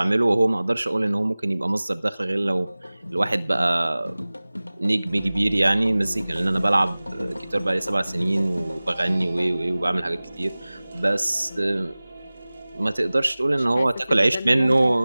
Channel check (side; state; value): both; inverted; correlation -0.99